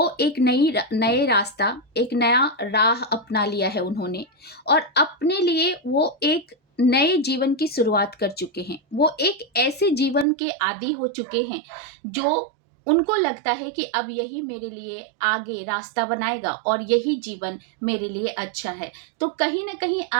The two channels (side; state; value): left; drops out; at 10.2 s